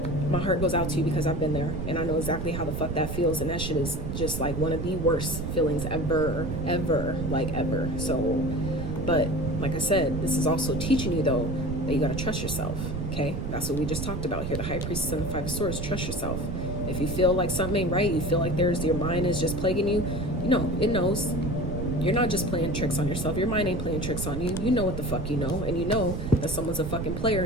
my heart goes out to you, because I've been there and I know exactly how the fuck that feels. And that shit is just like one of the worst feelings ever. So, but like I said, this is also teaching you, though, that you got to trust yourself, okay? That's what we just talked about here. The High Priestess and the Five of Swords. Trust yourself. If you feel like something ain't right, you feel like your mind is just plaguing you, you know, it knows. You're not just playing tricks on yourself. Your mind ain't playing tricks on you. You know what the fuck you know. And you know that someone's a fucking player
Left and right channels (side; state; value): right; noise; rumble, 4 dB below the sound